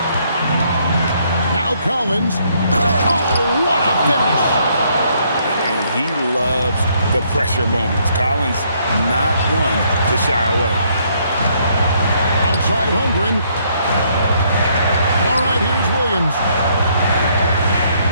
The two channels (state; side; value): inverted; both; correlation -0.69